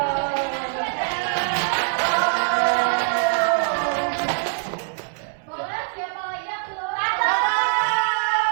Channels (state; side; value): silent; left; digital silence